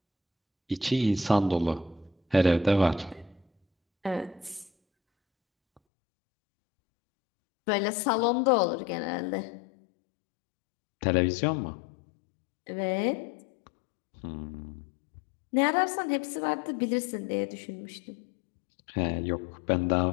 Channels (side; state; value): right; drops out; at 5.8 s